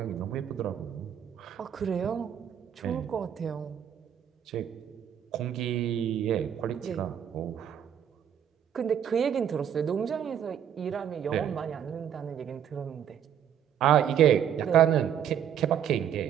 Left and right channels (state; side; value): quieter; left; 9.3 dB